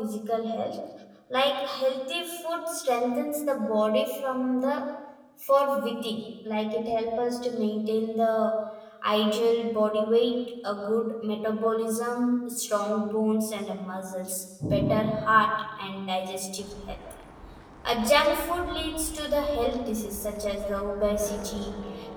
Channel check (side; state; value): both; identical; correlation 1.00